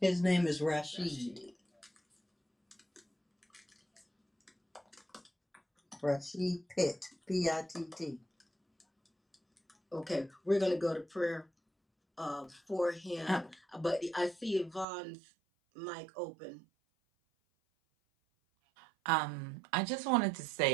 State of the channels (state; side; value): drops out; left; at 14.9 s